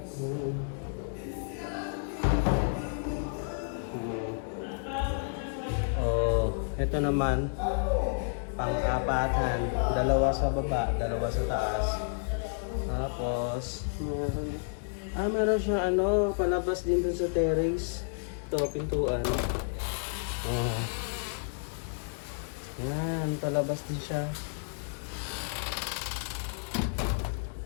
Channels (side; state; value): right; silent; digital silence